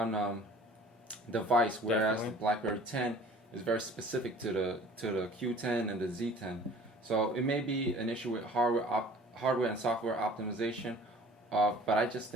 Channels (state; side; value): normal; both; correlation 0.48